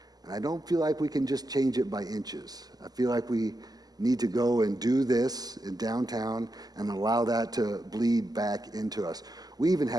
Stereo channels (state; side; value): late; left; 0.19 ms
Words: And I don't feel like we can just change it by inches. I feel like we need to go and do this in downtown and allow that to bleed back into us. We even